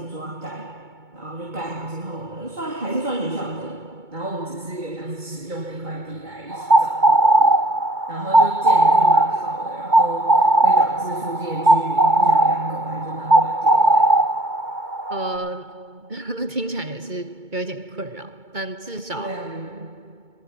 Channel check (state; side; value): late; left; 2.2 ms